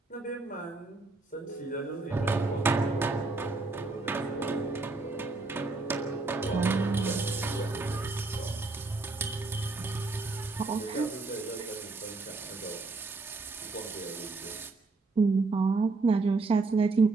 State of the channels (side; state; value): left; quieter; 3.6 dB